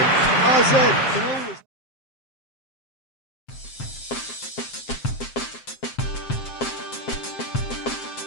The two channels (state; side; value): late; right; 7.6 ms